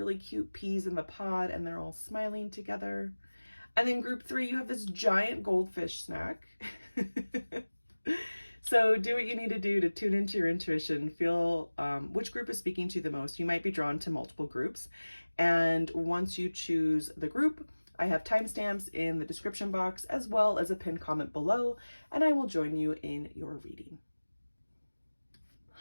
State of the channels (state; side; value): inverted; both; correlation -1.00